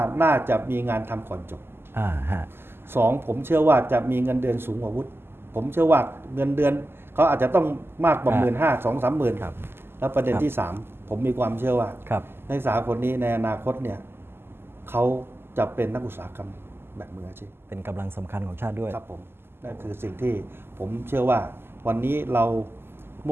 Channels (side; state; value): left; late; 0.11 ms